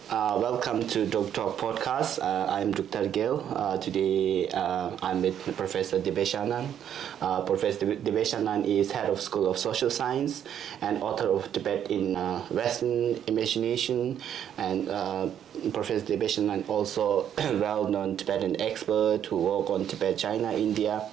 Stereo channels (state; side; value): quieter; left; 9.6 dB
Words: to Drukthar podcast. I'm Drukthar Gill. Today I'm with Professor Dibyesh Anand. Professor Dibyesh Anand is head of School of Social Science and author of Tibet in Western Imagination. And Professor Dibyesh Anand also well-known Tibetan expert who work on Tibet, China, India.